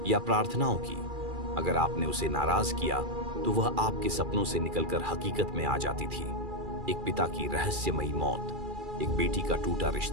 या प्रार्थनाओं की। अगर आपने उसे नाराज किया तो वह आपके सपनों से निकलकर हकीकत में आ जाती थी। एक पिता की रहस्यमयी मौत, एक बेटी का टूटा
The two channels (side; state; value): left; late; 2.4 ms